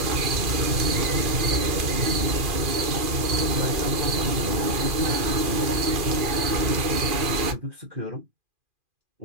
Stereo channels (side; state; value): left; late; 2.4 ms